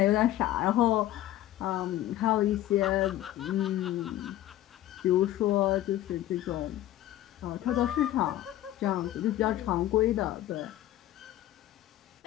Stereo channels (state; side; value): quieter; right; 13.8 dB